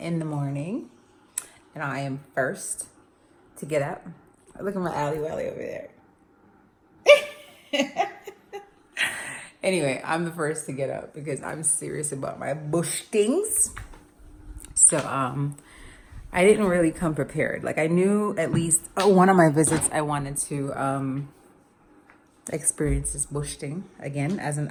the morning, and I am first to get up. Look at my alley wally over there. Anyway, I'm the first to get up because I'm serious about my bush things. So I didn't really come prepared. Like, I knew at least one of my visits I wanted to experience this bush thing again as an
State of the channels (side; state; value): both; identical; correlation 1.00